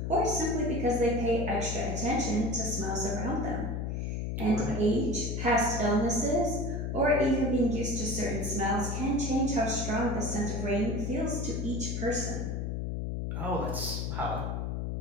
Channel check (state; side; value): noise; left; hum, 2 dB below the sound